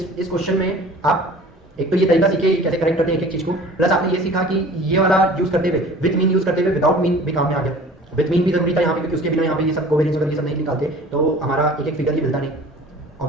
क्वेश्चन में आप एक तो ये तरीका सीखे कैसे करेक्ट करते हैं एक एक चीज़ को, प्लस आपने ये सीखा कि ये वाला यूज करते हुए विथ मीन यूज करते हुए विदाउट मीन भी काम में आ गया। विथ मीन भी जरूरी था यहाँ पे क्योंकि उसके बिना यहाँ पे ये सब कोवेरिएंस वगैरह ये सब नहीं निकालते तो हमारा एक एक फिगर ये मिलता नहीं, और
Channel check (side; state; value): both; normal; correlation 0.45